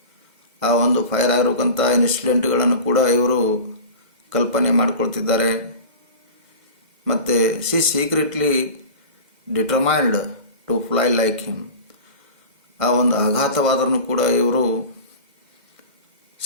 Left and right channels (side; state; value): left; late; 2.0 ms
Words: ಆ ಒಂದು fire ಆಗಿರುವಂಥ ಇನ್ಸಿಡೆಂಟ್ಗಳನ್ನು ಕೂಡ ಇವರು ಕಲ್ಪನೆ ಮಾಡಿಕೊಳ್ತಿದ್ದಾರೆ. ಮತ್ತು she secretly determined to fly like him. ಆ ಒಂದು ಆಘಾತವಾದರೂ ಕೂಡ ಇವರು